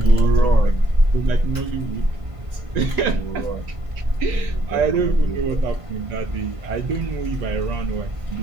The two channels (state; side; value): late; left; 1.5 ms